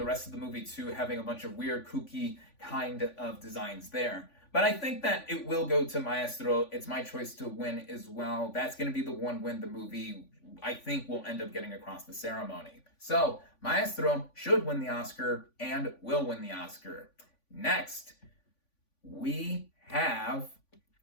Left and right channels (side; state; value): right; late; 3.5 ms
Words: rest of the movie too, having a bunch of weird, kooky kind of designs there. But I think that it will go to Maestro. It's my choice to win as well. That's going to be the one win the movie I think will end up getting across the ceremony. So, Maestro should win the Oscar and will win the Oscar. Next, we have